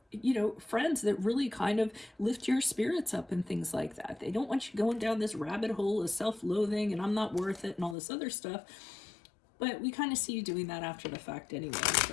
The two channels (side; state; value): right; drops out; at 8.0 s